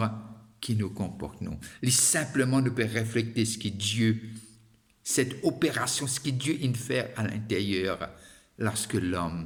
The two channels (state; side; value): identical; both; correlation 1.00